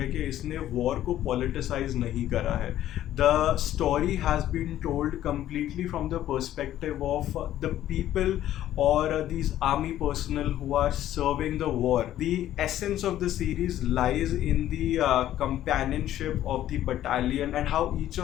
कि इसने वॉर को पॉलिटिसाइज नहीं करा है. The story has been told completely from the perspective of the people or these army personnel who are serving the war. The essence of the series lies in the companionship of the battalion and how each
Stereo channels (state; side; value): quieter; right; 12.6 dB